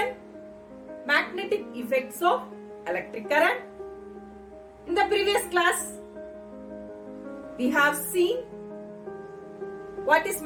Magnetic Effects of Electric Current. In the previous class, we have seen what is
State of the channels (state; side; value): identical; both; correlation 1.00